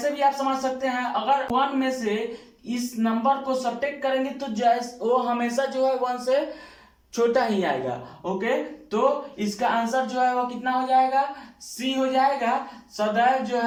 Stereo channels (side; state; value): both; identical; correlation 1.00